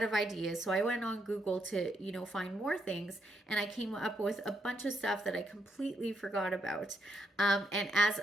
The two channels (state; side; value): normal; both; correlation 0.78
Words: of ideas, so I went on Google to find more things, and I came up with a bunch of stuff that I completely forgot about. And as